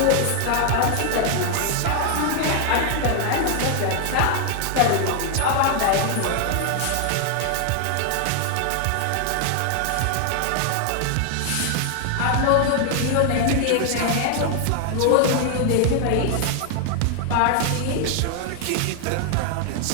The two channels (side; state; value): both; different; correlation 0.00